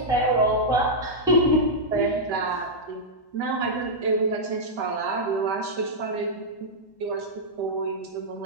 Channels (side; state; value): right; late; 1.1 ms